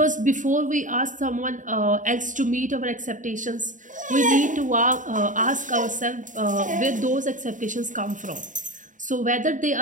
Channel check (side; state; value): left; late; 0.37 ms